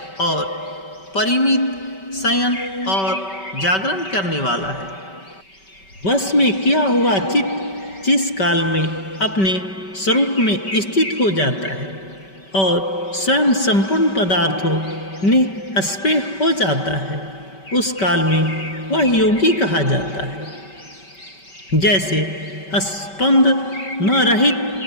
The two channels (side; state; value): right; late; 5.2 ms